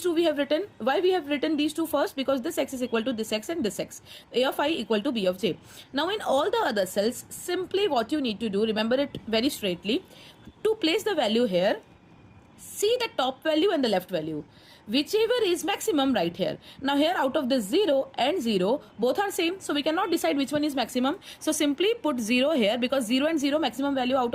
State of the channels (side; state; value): both; identical; correlation 1.00